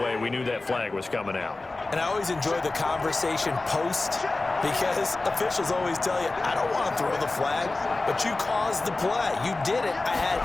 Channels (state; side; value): quieter; right; 3.2 dB